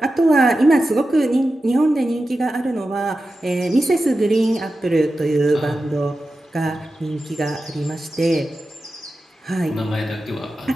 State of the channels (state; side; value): normal; both; correlation 0.92